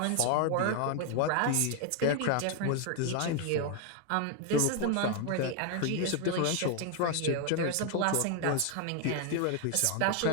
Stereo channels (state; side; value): different; both; correlation 0.01